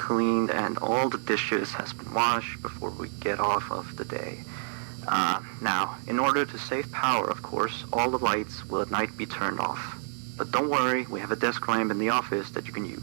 and all the dishes has been washed before we get off of the day. Now, in order to save power, of course, all the lights will at night be turned off. But don't worry, we have a desk lamp in the office that you can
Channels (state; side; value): silent; left; 59 dB below the other